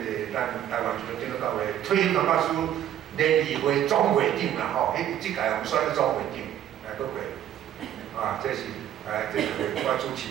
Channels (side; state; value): left; quieter; 10.9 dB